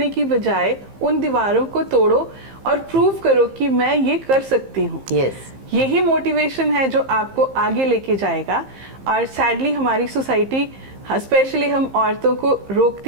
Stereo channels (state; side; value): late; left; 15 ms